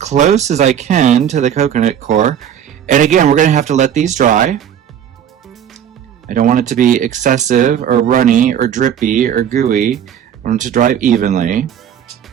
as I can to the coconut core. And again, we're going to have to let these dry. I don't want it to be excessive or runny or drippy or gooey. I want it to dry evenly.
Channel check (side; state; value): left; quieter; 9.4 dB